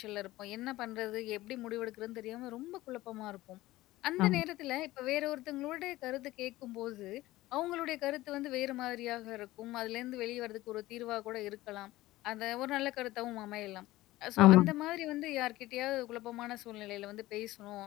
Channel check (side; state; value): right; quieter; 17.4 dB